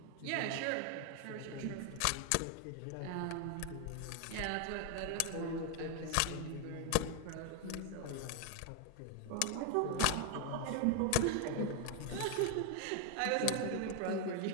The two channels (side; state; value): both; different; correlation 0.01